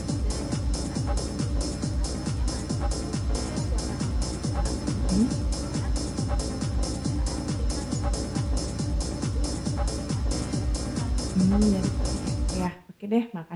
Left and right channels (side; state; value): both; identical; correlation 1.00